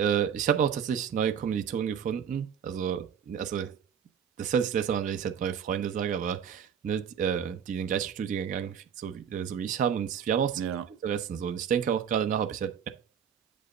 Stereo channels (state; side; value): quieter; left; 8.0 dB